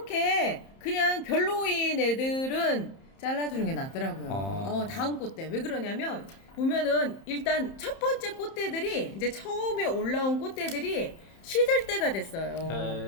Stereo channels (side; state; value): right; late; 31 ms